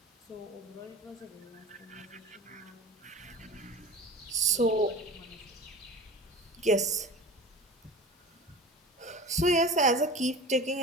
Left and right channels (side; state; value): both; normal; correlation 0.35